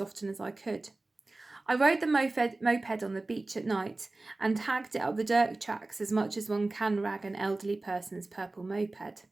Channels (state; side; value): quieter; left; 3.1 dB